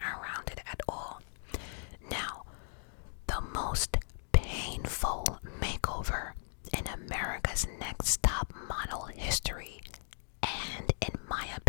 around it at all. Now, the most painful makeover in America's Next Top Model history, and in my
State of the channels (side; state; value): right; silent; digital silence